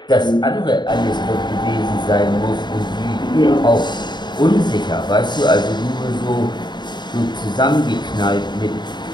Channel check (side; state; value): right; late; 0.21 ms